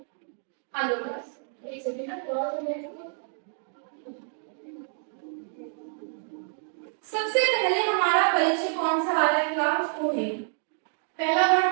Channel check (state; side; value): silent; left; 59 dB below the other